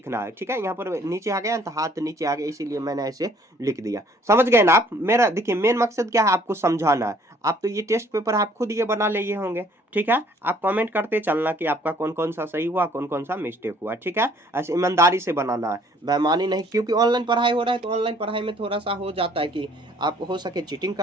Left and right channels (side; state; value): both; normal; correlation 0.59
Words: है। ठीक है, यहाँ पर नीचे आ गया तो हाथ नीचे आ गया, इसीलिए मैंने ऐसे लिख दिया। समझ गए ना आप, मेरा देखिए मेन मकसद क्या है, आपको समझाना है। आप तो ये टेस्ट पेपर आप खुद ये बना लिए होंगे, ठीक है, आप कमेंट करते चलना कि आपका कौन कौन सा सही हुआ, कौन कौन सा मिस्टेक हुआ। ठीक है, ऐसे ईमानदारी से बनाना है, बेईमानी नहीं, क्योंकि ऑनलाइन पढ़ाई हो रहा है तो ऑनलाइन पढ़ाई में थोड़ा सा हो जाता है कि आप हो सके चीटिंग